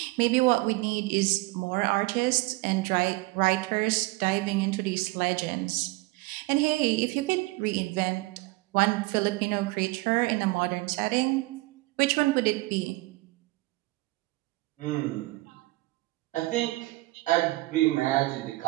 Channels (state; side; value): quieter; left; 21.9 dB